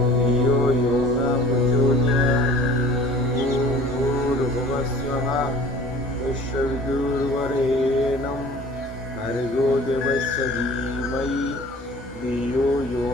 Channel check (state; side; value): normal; both; correlation 0.47